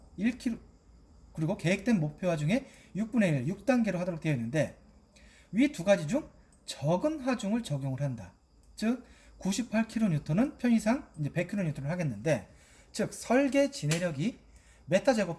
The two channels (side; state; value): both; identical; correlation 1.00